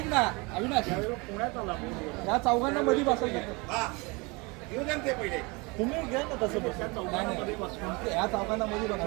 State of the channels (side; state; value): left; quieter; 27.2 dB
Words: ना अविनाश पुण्यात आला या चौघांना मध्ये बसायचं हा येऊ द्या ना ते पहिले तुम्ही घ्या ना तसं बसून. नाही, नाही. या चौकांना मध्ये बघा.